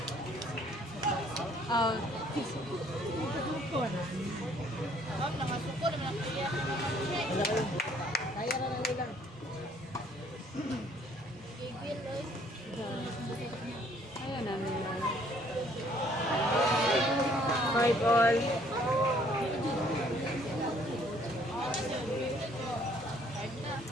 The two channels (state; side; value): normal; both; correlation 0.61